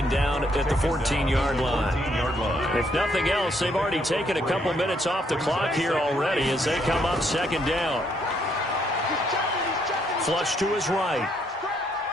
down at the 14-yard line. If nothing else, they've already taken a couple minutes off the clock here already as they come up 2nd down. Flush to his right.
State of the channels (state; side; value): normal; both; correlation 0.72